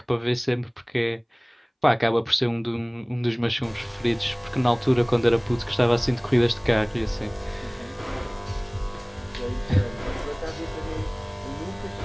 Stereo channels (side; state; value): both; identical; correlation 1.00